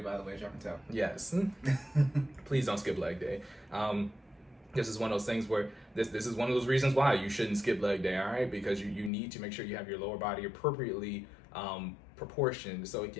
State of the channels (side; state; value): right; drops out; at 9.1 s